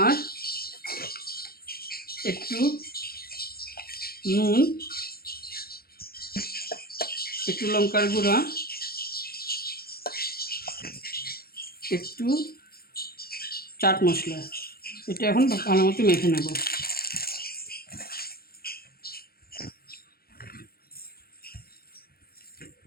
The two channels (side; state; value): right; late; 0.44 ms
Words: একটু নুন, একটু লঙ্কার গুঁড়া, একটু চাট মশলা। এটা এখন ভালো মতো মেখে নেব।